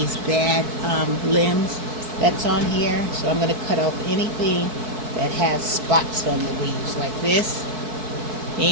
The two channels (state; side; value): late; left; 4.6 ms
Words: bad limbs that's on here. So I'm going to cut off anything that has spots on the leaves like this.